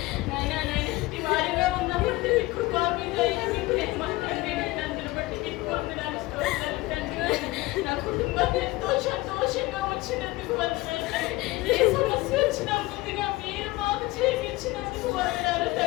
వారిగా ఉన్నప్పుడు కృపా మీద నా కుటుంబాన్ని ఎంతో సంతోషంగా వచ్చినందుకు వందనాలు. ఏ సమస్య వచ్చినా ముందుగా మీరు మాకు చేయించినందుకు వందనాలు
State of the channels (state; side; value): quieter; right; 20.1 dB